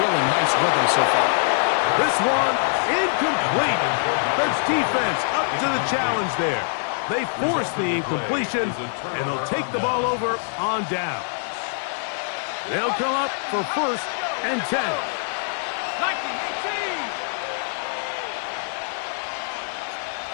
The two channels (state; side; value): silent; right; digital silence